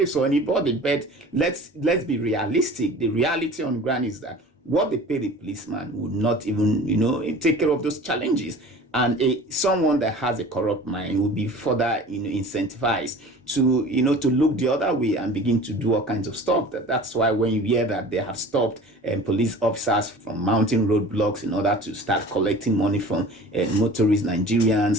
or anybody, but let's be realistic. The reality on ground is that what they pay the policeman would not even take care of those challenges. And someone that has a corrupt mind will be further incentivized to look the other way and begin to do all kinds of stuff. That's why when you hear that they have stopped police officers from mounting roadblocks in order to start collecting money from motorist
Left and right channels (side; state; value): both; normal; correlation 0.42